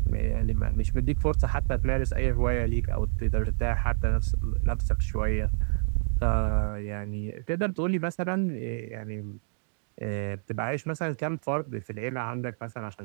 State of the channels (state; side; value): silent; left; digital silence